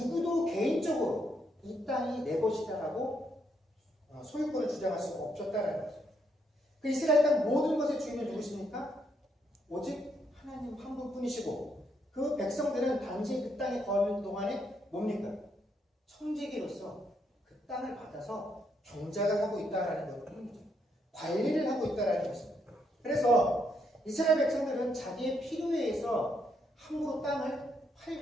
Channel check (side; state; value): both; normal; correlation 0.75